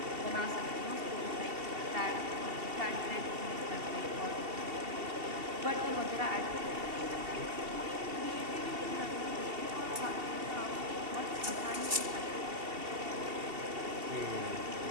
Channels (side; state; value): left; late; 2.7 ms